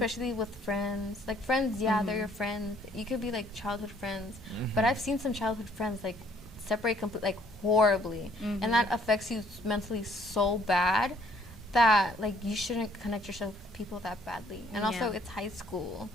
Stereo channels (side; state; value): both; normal; correlation 0.62